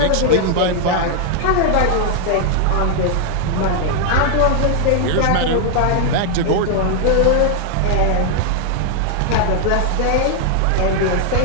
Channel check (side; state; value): both; different; correlation 0.00